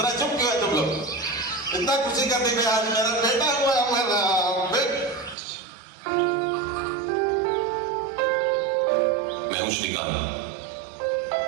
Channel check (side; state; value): left; drops out; at 5.4 s